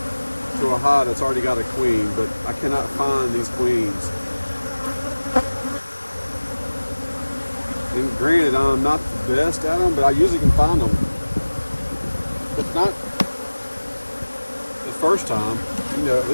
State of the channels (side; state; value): both; inverted; correlation -1.00